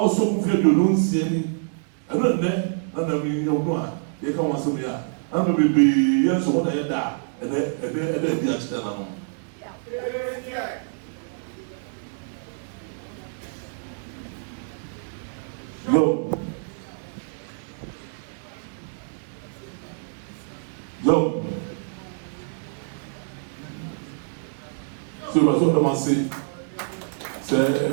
so afraid you don't see any, and then, none of you, they come once a year. I'm going to be yes, what I had, and then the external. Yo. So I was going to say,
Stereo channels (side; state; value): left; silent; digital silence